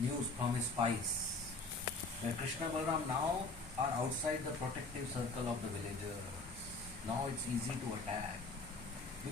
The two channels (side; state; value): right; quieter; 3.4 dB